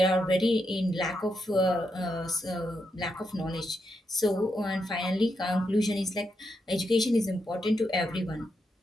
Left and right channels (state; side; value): normal; both; correlation 0.83